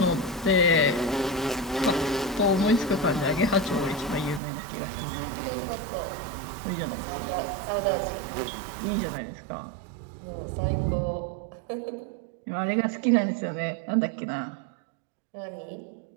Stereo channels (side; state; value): left; drops out; at 4.4 s